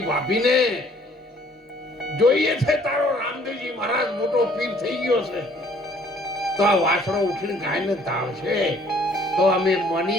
ભાભીને જોઈએ છે તારો રામદેવજી મહારાજ મોટો પીર થઈ ગયો છે, તો આ વાછડો ઉઠીને ગાયને ધાવશે તો અમે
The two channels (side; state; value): both; normal; correlation 0.60